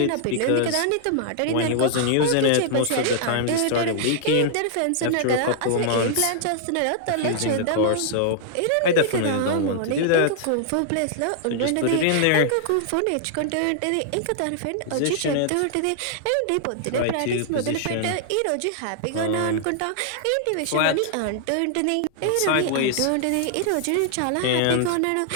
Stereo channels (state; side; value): different; both; correlation -0.01